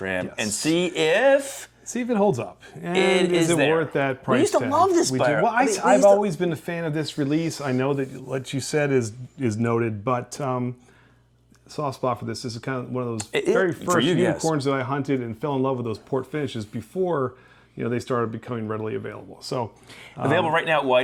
and see if it holds up. And is it worth that price tag? We used to love this beer. Well, I've always been a fan of this release. I know that what you said is noted, but soft spot for this. This is kind of one of those very first unicorns that I hunted and fell in love with those port finishes before they started becoming readily available. So available right now at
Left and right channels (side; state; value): both; identical; correlation 1.00